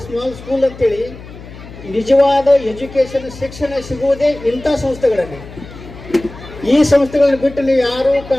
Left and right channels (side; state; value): left; noise; hum, 16 dB below the sound